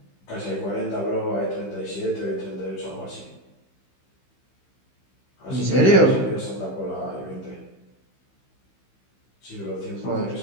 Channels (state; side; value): late; right; 15 ms